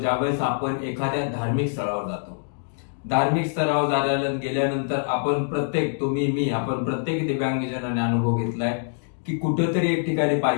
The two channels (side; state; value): right; silent; digital silence